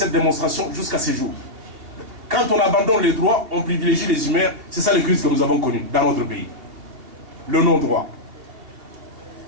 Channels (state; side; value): late; left; 2.7 ms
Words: démonstration jusqu'à ce jour. Quand on abandonne les droits, on privilégie les humains. C'est ça les crises que nous avons connues dans notre pays. Le non-droit.